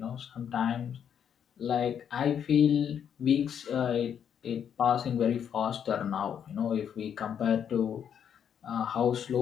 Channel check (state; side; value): quieter; right; 8.5 dB